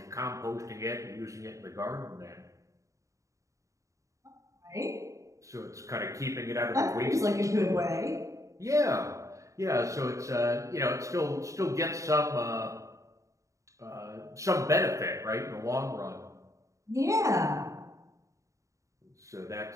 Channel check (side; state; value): left; late; 0.15 ms